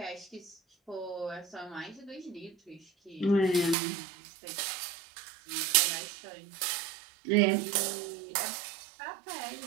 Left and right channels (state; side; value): drops out; left; at 3.8 s